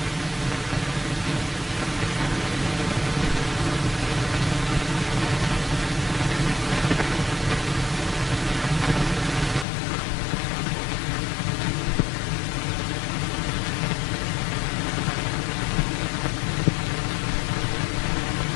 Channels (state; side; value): drops out; right; at 9.7 s